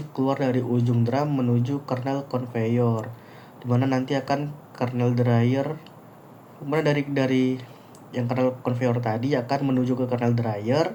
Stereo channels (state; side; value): identical; both; correlation 1.00